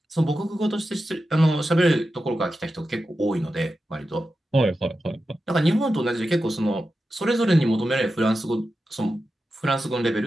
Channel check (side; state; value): both; normal; correlation 0.91